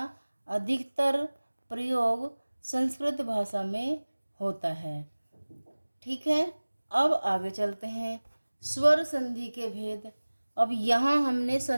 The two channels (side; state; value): both; inverted; correlation -1.00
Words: अधिकतर प्रयोग संस्कृत भाषा में होता है। ठीक है, अब आगे चलते हैं। स्वर संधि के भेद। अब यहाँ हमने